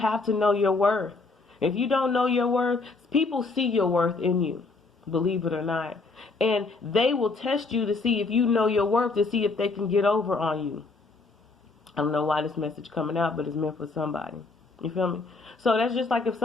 to know your worth. If you don't know your worth, people see your worth in you, believe it or not. And they will test you to see if you know your worth, to see if they can get over on you. I don't know why this message coming out, but it's meant for somebody. You feel me? So that's just like if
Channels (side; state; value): right; quieter; 3.8 dB